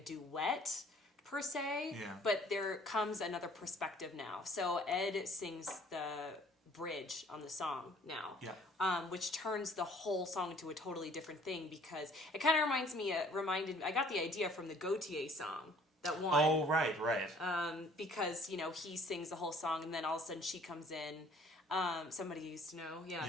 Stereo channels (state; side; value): normal; both; correlation 0.56